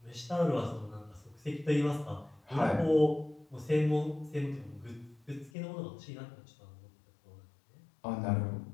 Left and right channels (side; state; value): right; drops out; at 5.5 s